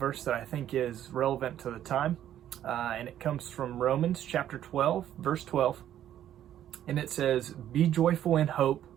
that I think is relevant to the time, and it comes from Romans chapter 12, verse 12, and it says, "Be joyful in hope,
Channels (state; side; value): quieter; left; 11.3 dB